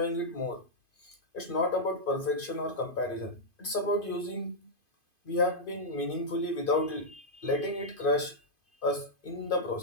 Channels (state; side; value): late; right; 2.5 ms